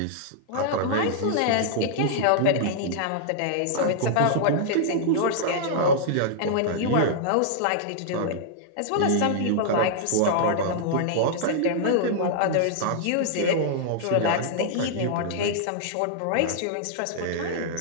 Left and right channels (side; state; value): both; different; correlation -0.01